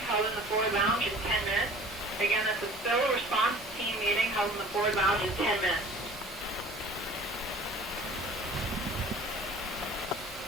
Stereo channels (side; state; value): both; normal; correlation 0.46